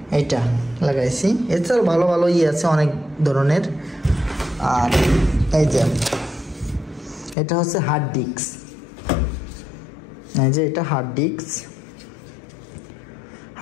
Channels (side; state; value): right; drops out; at 7.4 s